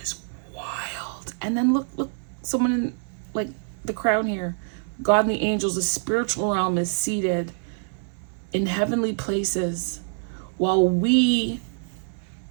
wild. And then look, someone in like the crown here. God and the angels, the spiritual realm is seated in heavenly places while we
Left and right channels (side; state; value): left; silent; 61 dB below the other